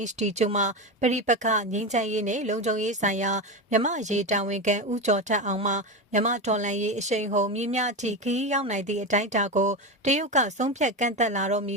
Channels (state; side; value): normal; both; correlation 0.18